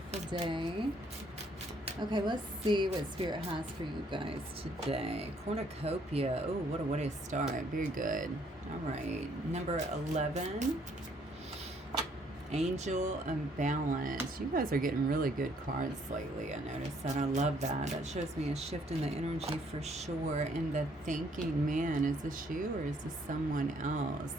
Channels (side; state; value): both; normal; correlation 0.65